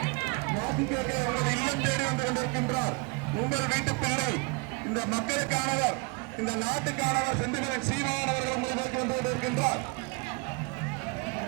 வாக்கு கேட்க உங்களை இல்லம் தேடி வந்து கொண்டிருக்கின்றார். உங்கள் வீட்டு பிள்ளை, இந்த மக்களுக்கானவர், இந்த நாட்டுக்கானவர் செந்தில்வேலன் சீமான் அவர்கள் உங்களை நோக்கி வந்து கொண்டிருக்கின்றார்.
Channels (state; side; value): quieter; left; 29.5 dB